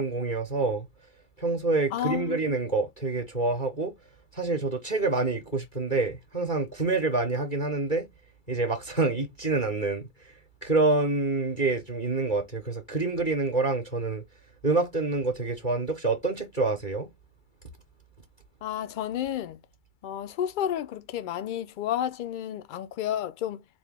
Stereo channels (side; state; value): right; late; 2.3 ms